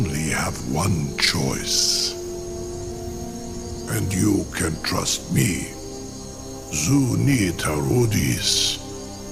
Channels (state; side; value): identical; both; correlation 1.00